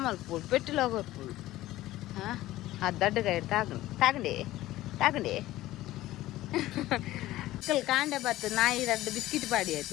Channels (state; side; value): quieter; right; 16.0 dB